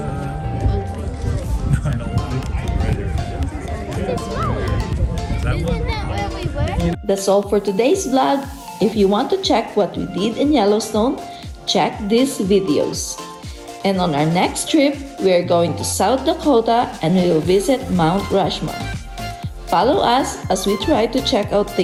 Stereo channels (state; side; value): identical; both; correlation 1.00